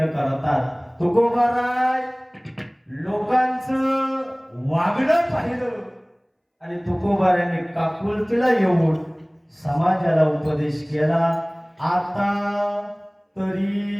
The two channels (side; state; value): both; identical; correlation 1.00